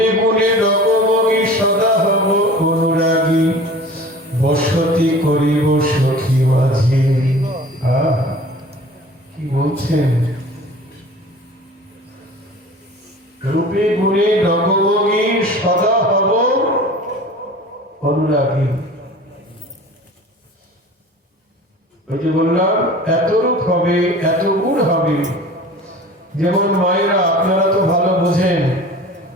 গুণে রকমগি সদা হব অনুরাগী, বসতি করিব সখী মাঝে। কি বলছেন? রূপে গুণে রকমগি সদা হব অনুরাগী। ওই যে বললাম, এত রূপ হবে, এত গুণ হবে। যেমন মায়েরা, আপনারা তো ভালো বোঝেন,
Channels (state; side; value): normal; both; correlation 0.42